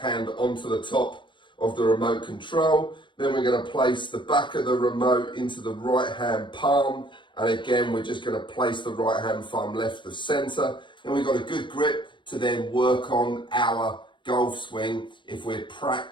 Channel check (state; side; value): late; right; 0.23 ms